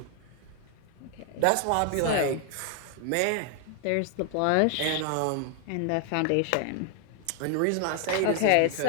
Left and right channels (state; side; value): different; both; correlation 0.00